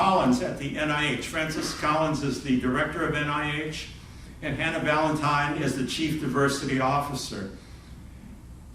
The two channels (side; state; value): both; identical; correlation 1.00